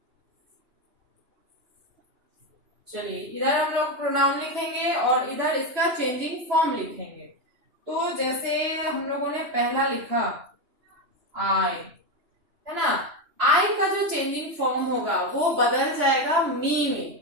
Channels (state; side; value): late; left; 2.9 ms